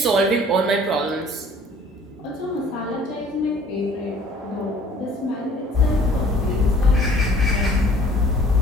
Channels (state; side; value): normal; both; correlation 0.54